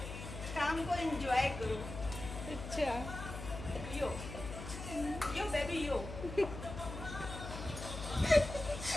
काम को एंजॉय करो। अच्छा यो यो बेबी यो।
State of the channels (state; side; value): noise; left; hum, 9 dB below the sound